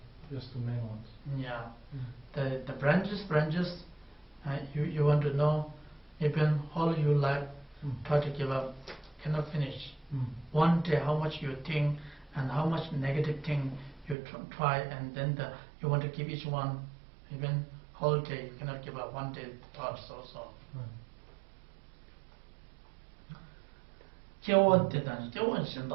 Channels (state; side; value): drops out; left; at 14.2 s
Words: just the main ones. Yeah. The branches, you want to know even how you like try to give up, cannot finish. One day how much you think and how much negative thing you try, and then you want to give each one, even whole day. You cannot give up one day thoughts also. Kewan tetan, kewan